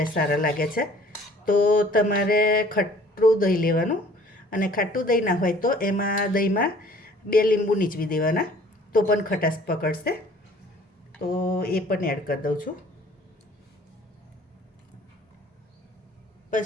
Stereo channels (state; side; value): normal; both; correlation 0.53